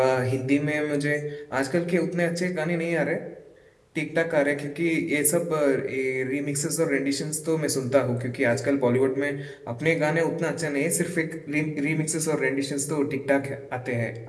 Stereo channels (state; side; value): identical; both; correlation 1.00